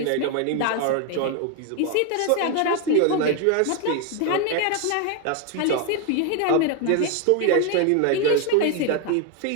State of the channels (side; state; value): both; different; correlation 0.01